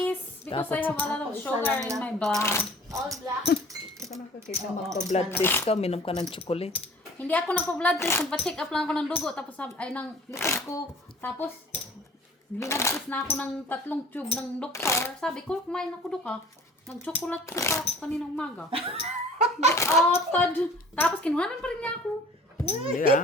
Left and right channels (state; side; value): normal; both; correlation 0.48